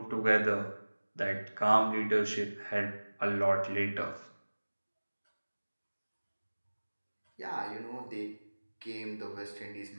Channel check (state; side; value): inverted; both; correlation -1.00